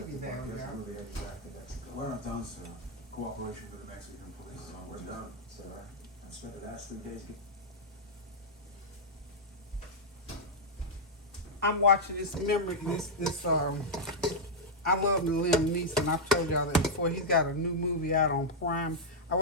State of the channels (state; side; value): normal; both; correlation -0.05